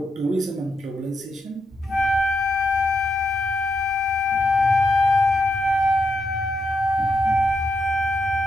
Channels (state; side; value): normal; both; correlation 0.82